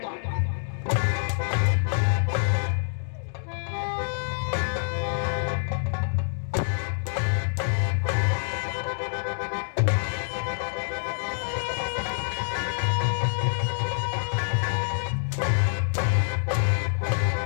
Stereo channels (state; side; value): silent; right; digital silence